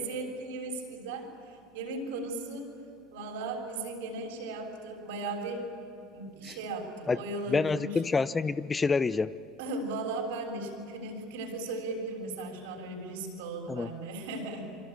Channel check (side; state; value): right; noise; hum, 29 dB below the sound